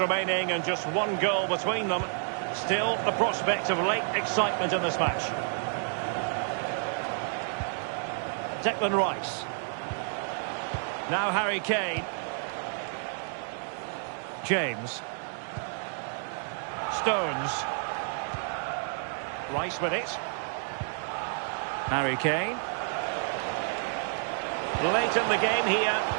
remaining and just one goal between them, still the prospect of late excitement in this match. Declan Rice. Now Harry Kane. James. Stones. Rice with it. Harry Kane. Late in the game here,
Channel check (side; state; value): left; silent; 58 dB below the other